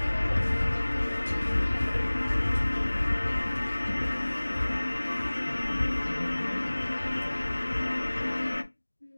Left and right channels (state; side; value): inverted; both; correlation -1.00